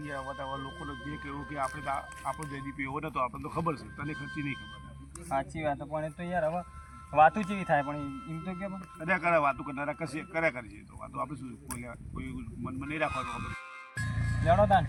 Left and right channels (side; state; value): both; identical; correlation 1.00